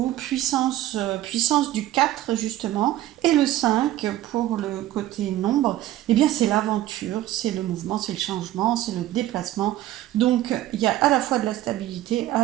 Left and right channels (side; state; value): left; quieter; 14.3 dB